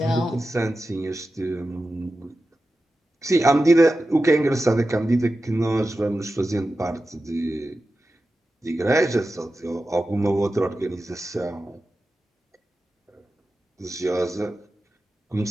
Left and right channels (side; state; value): both; normal; correlation 0.93